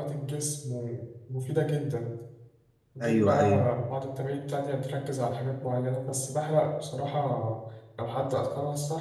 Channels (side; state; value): both; identical; correlation 1.00